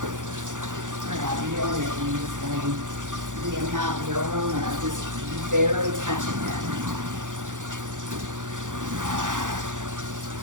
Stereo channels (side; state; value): left; late; 0.87 ms